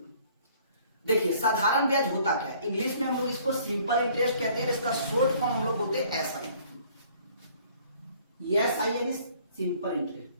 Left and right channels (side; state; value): both; inverted; correlation -0.57